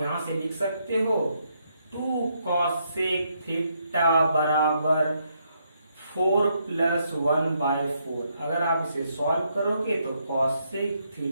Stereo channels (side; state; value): both; inverted; correlation -0.76